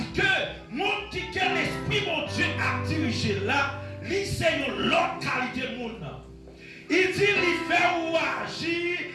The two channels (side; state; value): both; identical; correlation 1.00